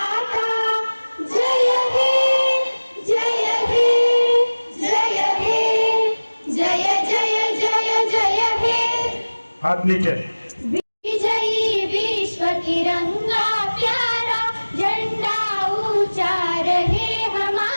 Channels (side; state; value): both; inverted; correlation -1.00